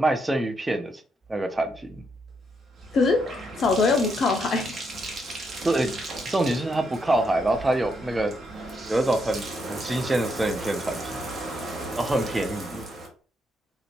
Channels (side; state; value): both; normal; correlation 0.78